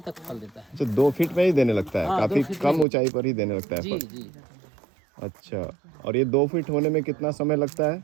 फल देता है। तो 2 फीट में ही देने लगता है? हाँ, काफी 2 फीट कम में। ऊंचाई पर ही देने लगता है जी फल? जी। अच्छा, और ये 2 फीट होने में कितना समय लगता है?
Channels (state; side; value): drops out; left; at 2.9 s